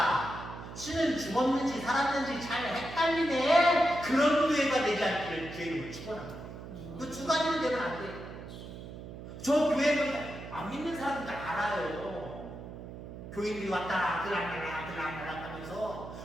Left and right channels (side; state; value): right; noise; hum, 12 dB below the sound